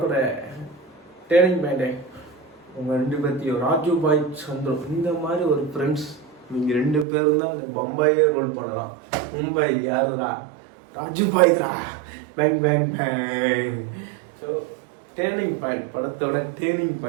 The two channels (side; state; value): left; drops out; at 7.1 s